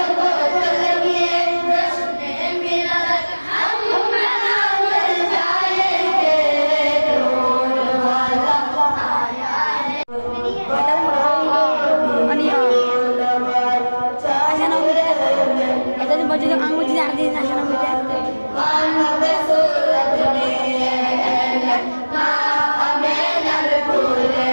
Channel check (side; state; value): both; inverted; correlation -1.00